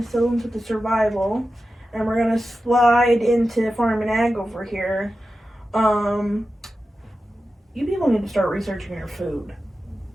with the survival, and we're going to slide into farm and ag over here, you people need to start researching your food.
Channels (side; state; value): both; normal; correlation 0.92